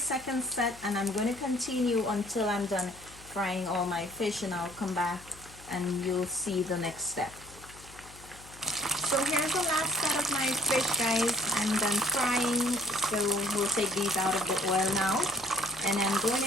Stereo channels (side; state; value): left; noise; hum, 20 dB below the sound